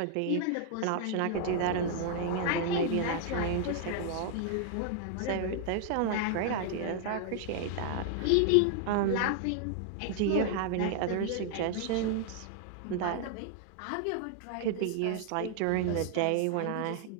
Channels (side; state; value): both; different; correlation 0.00